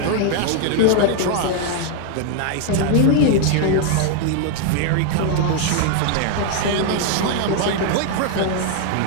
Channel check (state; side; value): different; both; correlation 0.00